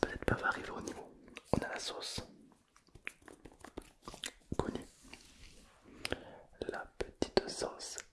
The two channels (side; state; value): both; identical; correlation 1.00